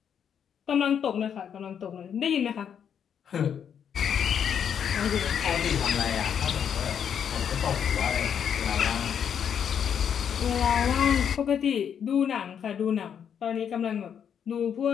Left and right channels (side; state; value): right; quieter; 8.1 dB